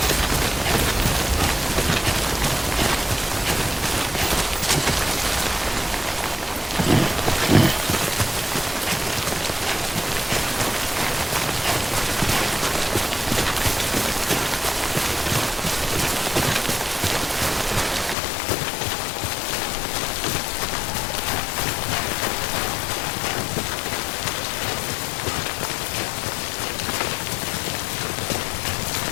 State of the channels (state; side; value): drops out; right; at 18.2 s